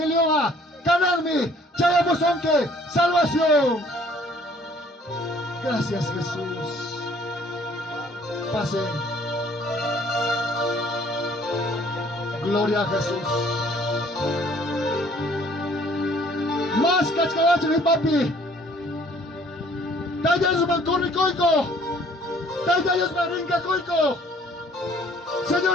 canarme, chayamosonque, salvación. Gracias Jesús. Pasen. Gloria a Jesús. Más cachcavacho mi papi. Tayas mancorri coico. Tayas marinca coico.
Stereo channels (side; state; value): both; normal; correlation 0.58